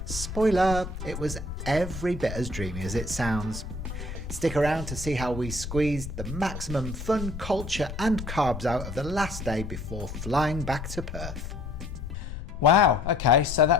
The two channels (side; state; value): left; noise; rumble, 8 dB below the sound